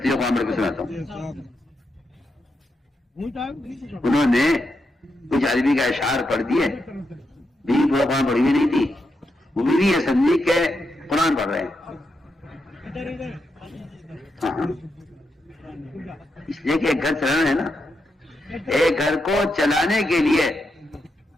قرآن پڑھ کے سناتا ہوں. انہوں نے کچھ عربی کا اشعار پڑھ دیے، بیوی پورا قرآن پڑھی ہوئی نہیں تھی، وہ بیوی یہ سمجھی کہ قرآن پڑھ رہے ہیں. ہاں اس لیے کہ ایک گھر چلانا ہے نا، ایک گھر کو چلانے کے لیے،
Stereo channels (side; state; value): both; normal; correlation 0.84